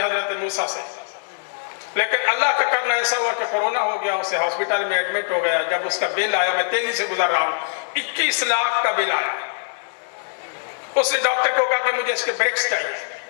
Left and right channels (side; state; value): right; silent; digital silence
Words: حضرت موسیٰ سے، لیکن اللہ کا کرنا ایسا ہوا کہ کورونا ہو گیا، اسے ہاسپٹل میں ایڈمٹ ہو گیا۔ جب اس کا بل آیا، میں تیزی سے گزر رہا ہوں، 21 لاکھ کا بل آیا۔ اس نے ڈاکٹر کو کہا کہ مجھے اس کے بریکس چاہیے،